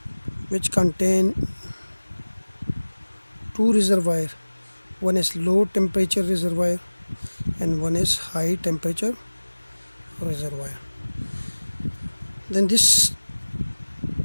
which contain two reservoir, one is low temperature reservoir and one is high temperature reservoir. Then this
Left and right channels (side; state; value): both; inverted; correlation -1.00